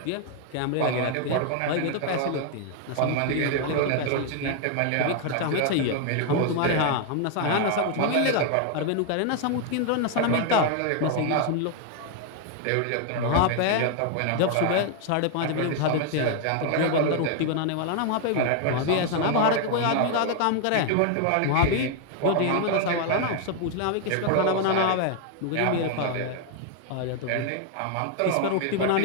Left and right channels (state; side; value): different; both; correlation 0.00